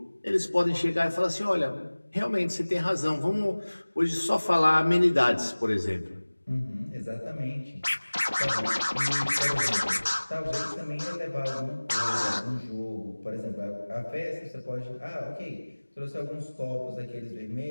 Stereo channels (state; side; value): inverted; both; correlation -1.00